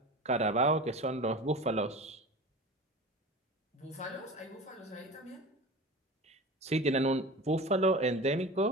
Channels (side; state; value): both; normal; correlation 0.33